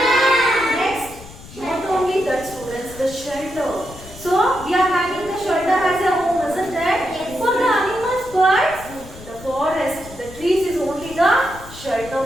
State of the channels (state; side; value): noise; left; rumble, 17 dB below the sound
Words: Next, not only that students, the shelter. So, we are having the shelter as a home, isn't it? Yes. For the animals, birds, the forest, the trees is only the shelter